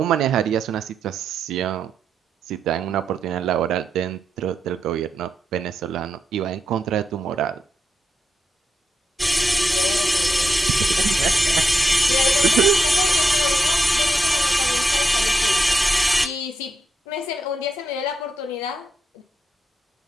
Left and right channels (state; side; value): normal; both; correlation 0.83